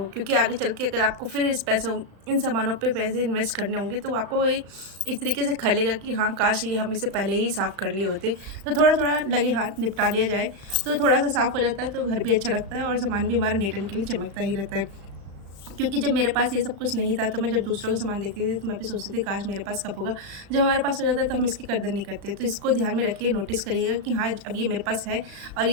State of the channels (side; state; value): left; late; 35 ms